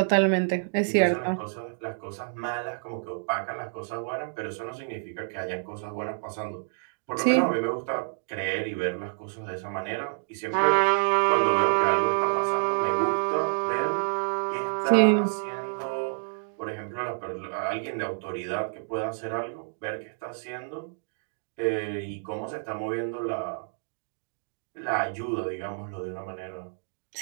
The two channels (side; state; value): left; silent; digital silence